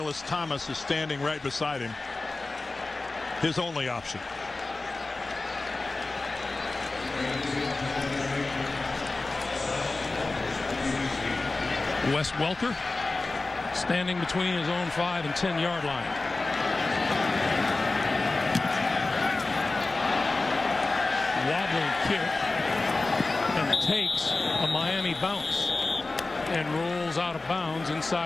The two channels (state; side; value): quieter; right; 3.3 dB